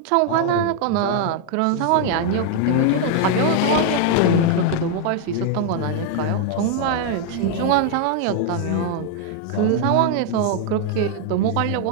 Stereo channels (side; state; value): both; different; correlation 0.00